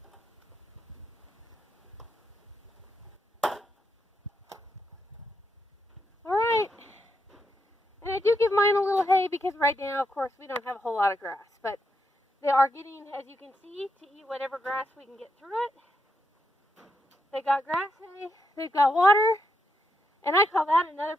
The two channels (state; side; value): normal; both; correlation 0.81